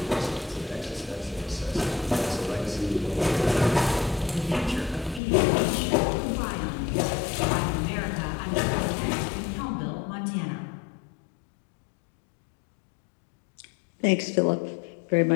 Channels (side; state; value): right; drops out; at 5.2 s